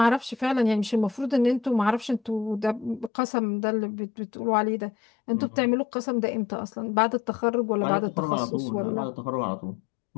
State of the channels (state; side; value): drops out; right; at 3.1 s